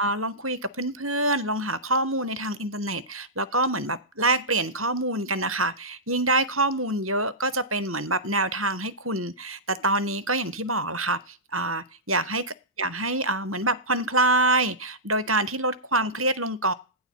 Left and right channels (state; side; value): normal; both; correlation -0.14